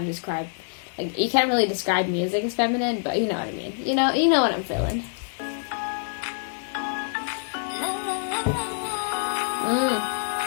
describe, like, you can't really describe music as feminine, but you know what I mean. You know what I'm feeling.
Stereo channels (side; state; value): right; silent; digital silence